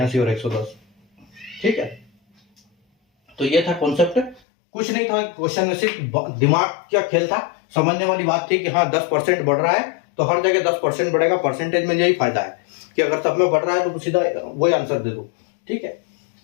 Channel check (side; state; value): right; drops out; at 4.4 s